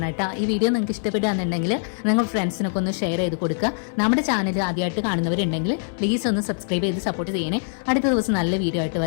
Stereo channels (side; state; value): right; silent; 63 dB below the other